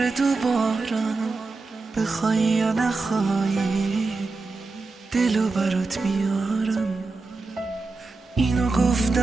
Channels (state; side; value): quieter; left; 3.8 dB